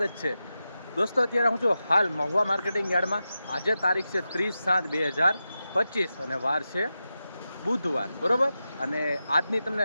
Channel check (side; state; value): both; inverted; correlation -0.91